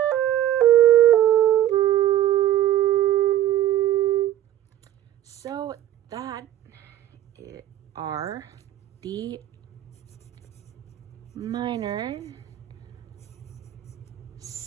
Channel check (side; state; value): left; quieter; 12.3 dB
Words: So that are the minor